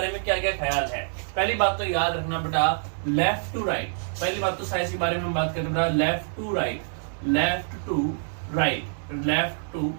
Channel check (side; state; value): left; silent; digital silence